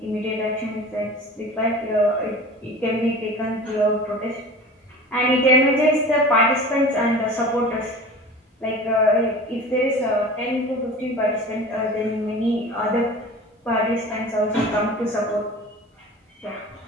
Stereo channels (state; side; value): normal; both; correlation 0.38